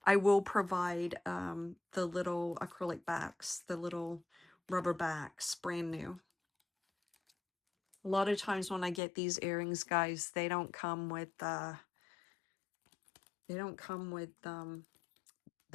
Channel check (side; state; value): right; drops out; at 9.0 s